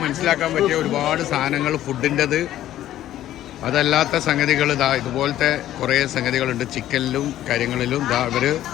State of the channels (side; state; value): right; quieter; 12.9 dB